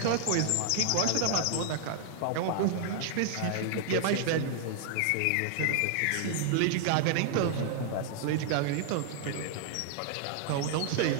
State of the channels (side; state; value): both; different; correlation -0.01